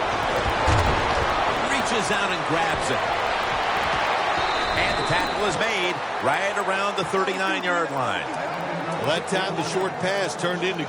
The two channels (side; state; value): both; identical; correlation 1.00